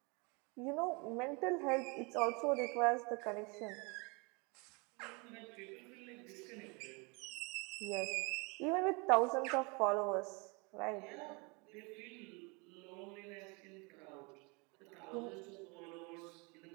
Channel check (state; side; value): quieter; left; 30.1 dB